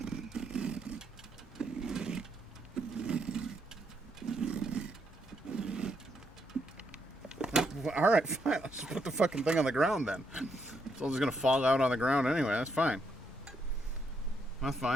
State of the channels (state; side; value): normal; both; correlation 0.77